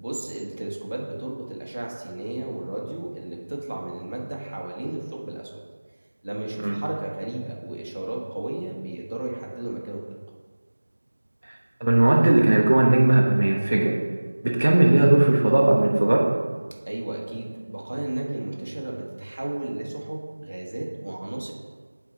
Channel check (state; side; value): inverted; both; correlation -1.00